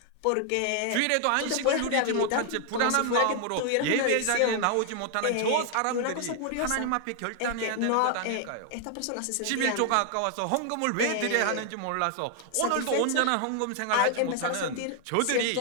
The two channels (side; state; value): both; different; correlation 0.00